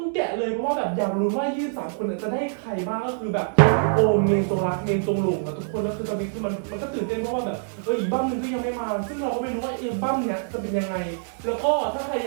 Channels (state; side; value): silent; left; 61 dB below the other